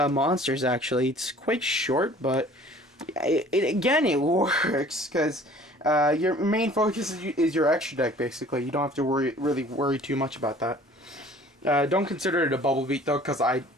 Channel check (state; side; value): normal; both; correlation 0.50